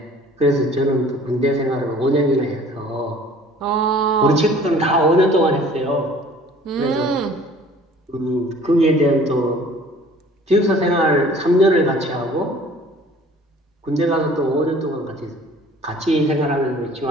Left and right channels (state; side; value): normal; both; correlation 0.50